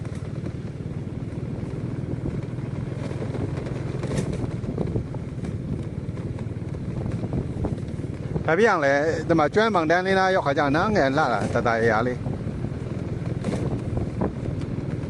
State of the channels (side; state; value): both; identical; correlation 1.00